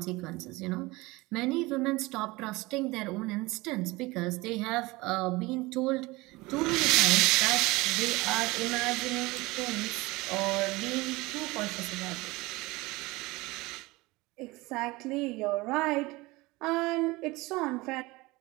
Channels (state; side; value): quieter; left; 22.0 dB